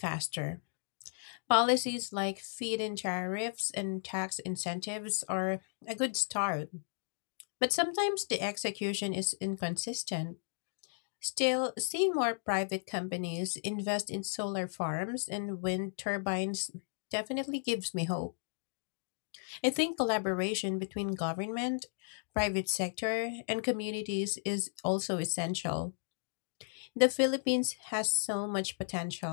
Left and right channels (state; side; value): silent; right; digital silence